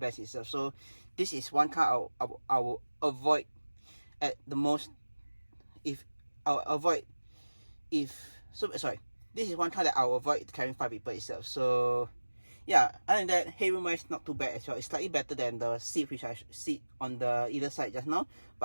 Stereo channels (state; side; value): inverted; both; correlation -1.00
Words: itself. So this is one car I will avoid at the most. This is one car that I will avoid carrying 5 people itself. So yeah, other than that, headroom wise not too bad as well. It's slightly better than the seat which I sit on the either side just now,